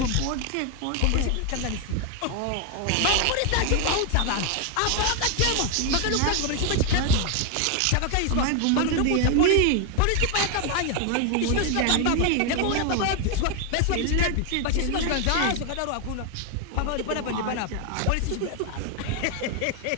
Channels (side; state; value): both; different; correlation 0.01